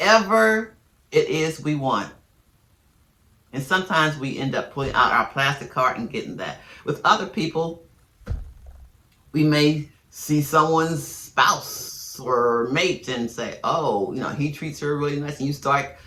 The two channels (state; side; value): identical; both; correlation 1.00